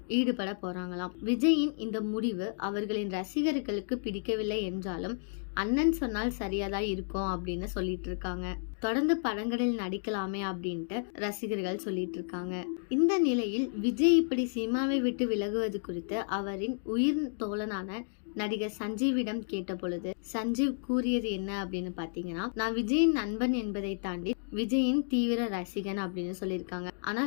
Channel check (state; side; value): silent; right; digital silence